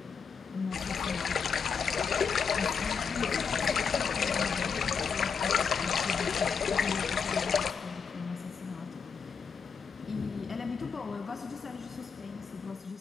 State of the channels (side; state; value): right; quieter; 6.0 dB